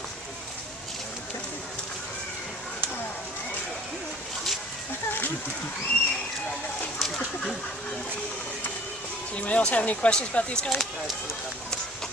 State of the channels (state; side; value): normal; both; correlation 0.49